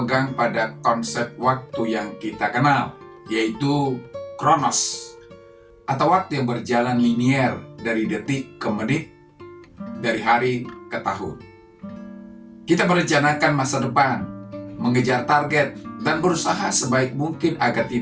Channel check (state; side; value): identical; both; correlation 1.00